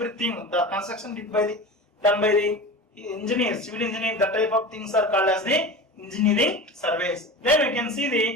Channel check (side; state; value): both; normal; correlation 0.31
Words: the construction done by the engineers, civil engineering, that type of things are called as the engineering surveys. Then we can see